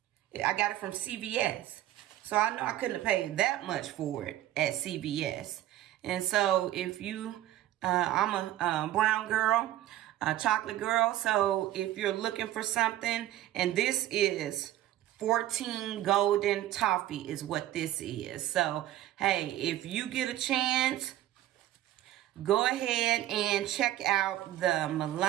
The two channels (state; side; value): quieter; left; 13.7 dB